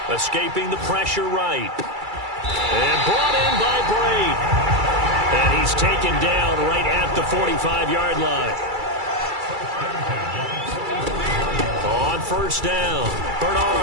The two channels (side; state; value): left; late; 2.3 ms